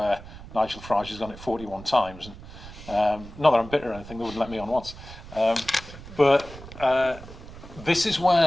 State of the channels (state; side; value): noise; right; rumble, 15 dB below the sound